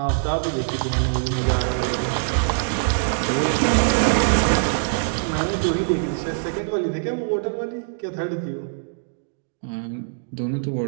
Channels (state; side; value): silent; left; digital silence